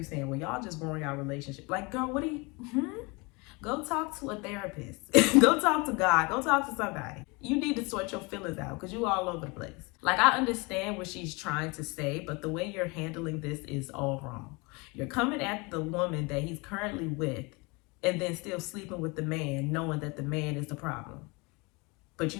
saying, well, y'all just growing our relationship. Like, girl, what do you, Go talk to a therapist. Go talk to God. Go talk to somebody. You need to sort your feelings out because you all over the place. I understand what she's trying to say, but the way you're handling this is all wrong. You're coming at the woman that he's currently with and then still sleeping with the man, knowing that the man is the problem. But you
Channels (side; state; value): right; quieter; 27.7 dB